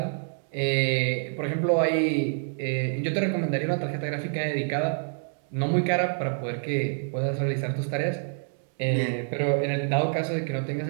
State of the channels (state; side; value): silent; left; digital silence